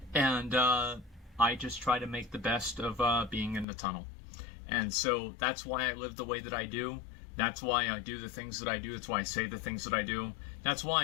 And I just try to make the best of being in the tunnel. And so that's why I live the way that I do. That's why I do the things that I do. That's why I say the things that I do. That's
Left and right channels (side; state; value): right; drops out; at 3.7 s